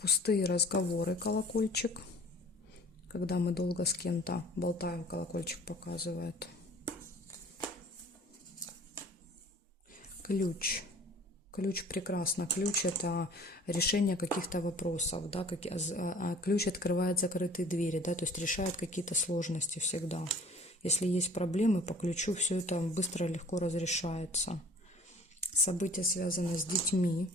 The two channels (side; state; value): both; normal; correlation 0.49